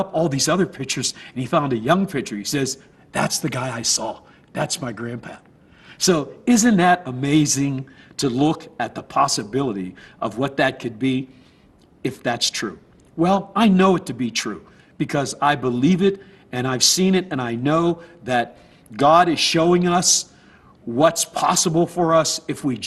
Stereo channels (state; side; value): identical; both; correlation 1.00